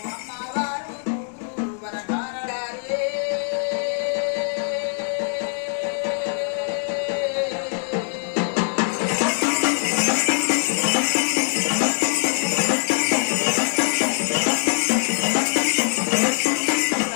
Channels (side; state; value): right; silent; 58 dB below the other